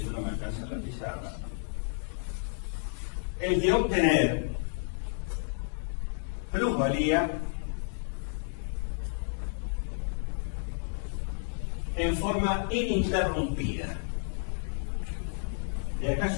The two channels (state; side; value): silent; right; digital silence